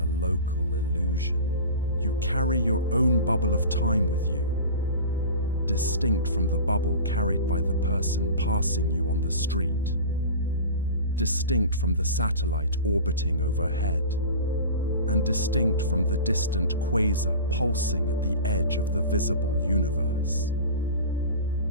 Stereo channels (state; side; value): inverted; both; correlation -0.35